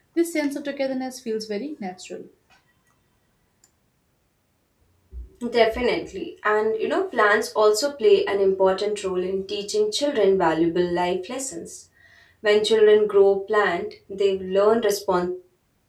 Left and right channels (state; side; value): identical; both; correlation 1.00